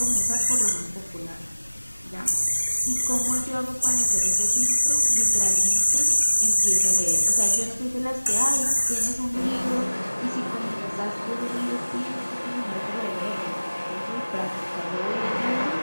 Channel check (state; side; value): inverted; both; correlation -1.00